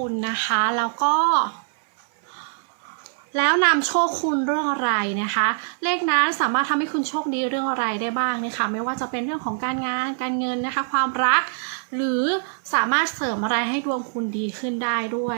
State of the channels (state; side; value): silent; left; 61 dB below the other